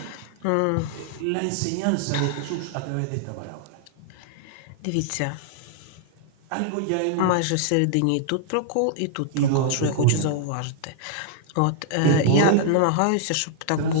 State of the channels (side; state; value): both; different; correlation -0.01